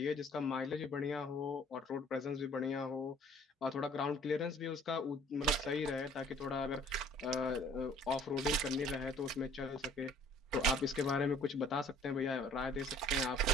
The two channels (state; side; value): normal; both; correlation 0.54